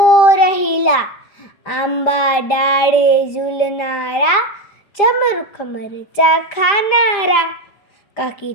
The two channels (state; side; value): late; right; 5.0 ms